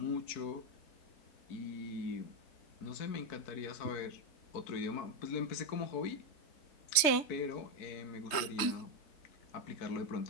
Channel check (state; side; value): late; right; 3.3 ms